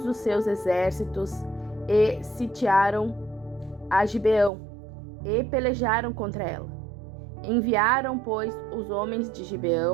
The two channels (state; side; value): drops out; left; at 4.5 s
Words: os seus exércitos, e sitiaram a Gibeão, e pelejaram contra ela. Enviaram, pois, os homens de